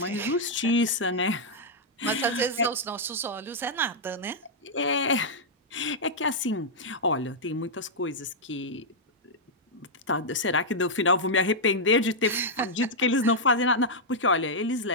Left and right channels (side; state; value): both; normal; correlation -0.06